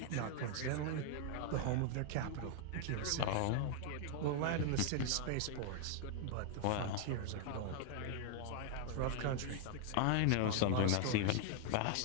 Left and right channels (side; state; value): both; different; correlation 0.00